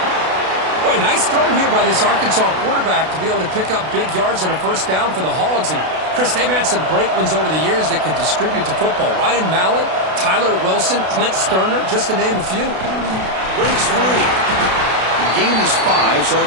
Boy, nice throw here by this Arkansas quarterback to be able to pick up big yards on a 1st down for the Hogs. And, Chris, they've had some great ones over the years that could distribute the football. Ryan Mallett, Tyler Wilson, Clint Sterner, just to name a few. Breaks free. The gain is 5, so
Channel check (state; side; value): late; left; 32 ms